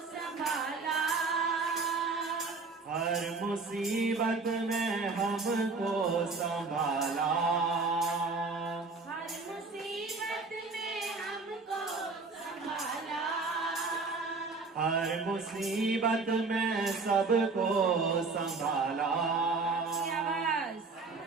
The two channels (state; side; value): quieter; left; 4.0 dB